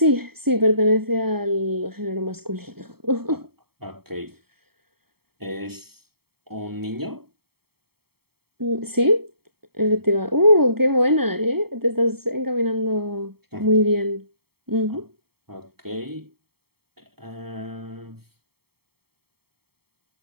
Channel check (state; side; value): late; left; 0.95 ms